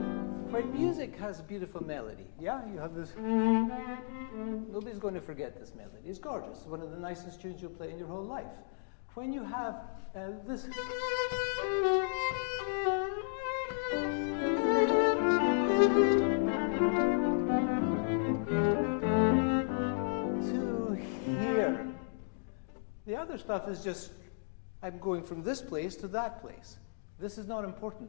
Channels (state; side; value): silent; right; digital silence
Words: Has a beautiful melody. Yeah, you have this. Nobody's going to forget this melody. It's gorgeous. It's one of the nicest tunes you'll play in your whole life. When you have this. To here. The other stuff is just, I'm going from this place to that place. This is not